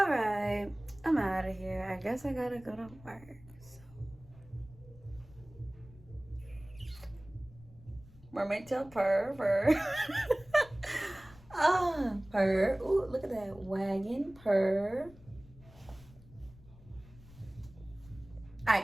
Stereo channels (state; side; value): noise; left; rumble, 22 dB below the sound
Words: right, I'm out of here. I guess I gotta go to work. So. Mermaid tail purr, purr. Ah, purr. Ooh, look at that wagon, purr. All right,